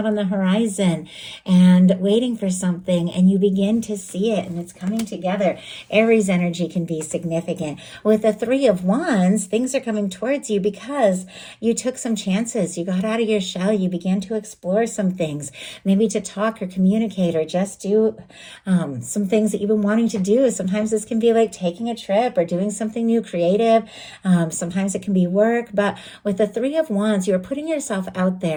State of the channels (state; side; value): identical; both; correlation 1.00